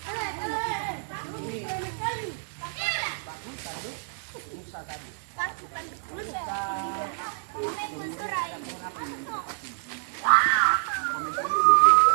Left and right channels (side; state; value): left; silent; digital silence